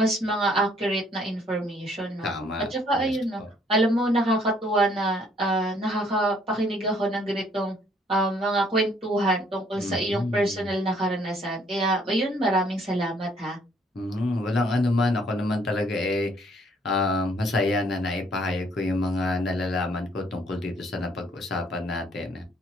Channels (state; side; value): normal; both; correlation 0.64